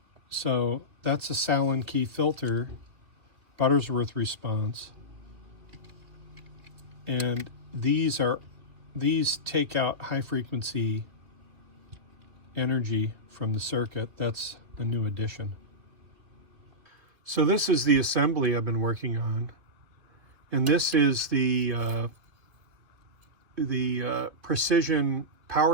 So that's a Sallen-Key filter, Butterworth response, and these take out high frequency energy from the circuit. That's a new addition. So this is the assembly I've been working on, and this is the precision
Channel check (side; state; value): left; late; 2.8 ms